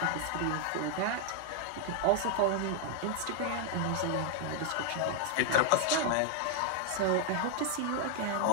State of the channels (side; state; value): both; different; correlation 0.00